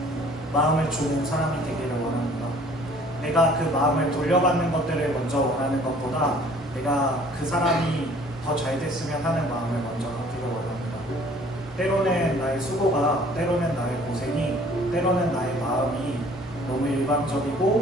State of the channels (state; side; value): normal; both; correlation 0.54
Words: 마음을 주는 사람이 되기를 원합니다. 내가 그 마음을 돌려받는 것들을 먼저 원하는 것보다 내가 그 사람이 더 잘 됐으면 하는 마음을 먼저 갖기를 원합니다. 때로는 나의 수고가, 때로는 나의 고생이, 때로는 나의 마음이 너무